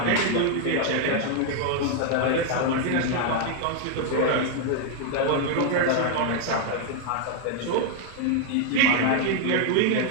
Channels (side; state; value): both; different; correlation 0.00